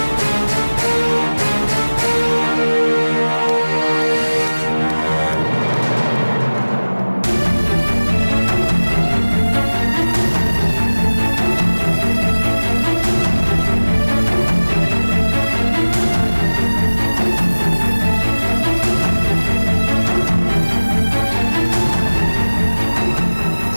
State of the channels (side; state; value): both; inverted; correlation -1.00